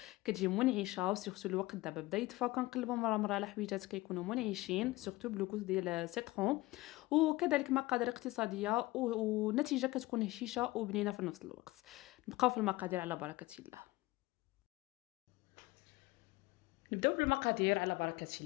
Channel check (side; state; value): right; quieter; 19.8 dB